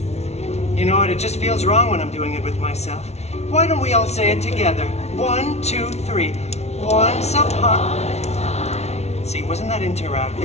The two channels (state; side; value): late; right; 0.31 ms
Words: You know what, it just feels wrong when I'm doing it with myself. Why don't we all say it together? 1, 2, 3. Once upon... See, wasn't that